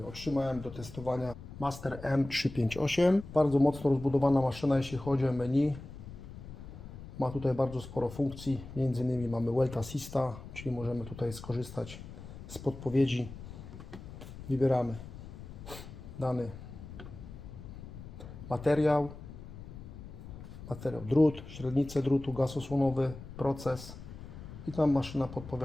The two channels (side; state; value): left; noise; rumble, 13 dB below the sound